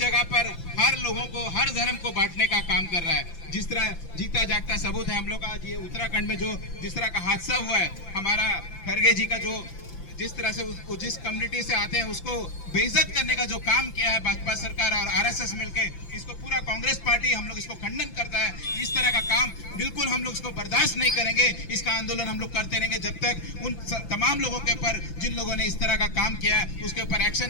पर हर लोगों को, हर धर्म को बांटने का काम कर रहा है। जिस तरह जीता जागता सबूत है हम लोग का, ये उत्तराखंड में जो जिस तरह का हादसा हुआ है, हमारा खरगे जी का जो जिस तरह से जिस कम्युनिटी से आते हैं उसको बेइज्जत करने का जो काम किया है भाजपा सरकार और आरएसएस मिलके, इसको पूरा कांग्रेस पार्टी हम लोग इसको खंडन करता है। इस तरह का काम बिल्कुल हम लोग इसको बर्दाश्त नहीं करेंगे। इसका आंदोलन हम लोग करते रहेंगे जब तक उन तमाम लोगों के ऊपर, जिन लोगों ने इस तरह का काम किया है, उसके ऊपर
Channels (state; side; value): late; right; 5.9 ms